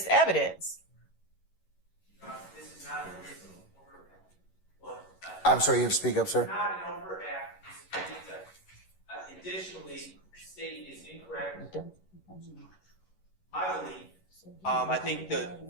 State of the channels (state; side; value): late; right; 11 ms